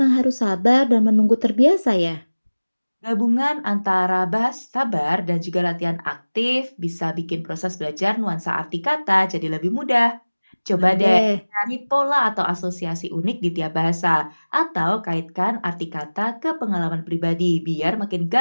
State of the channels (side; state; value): both; inverted; correlation -1.00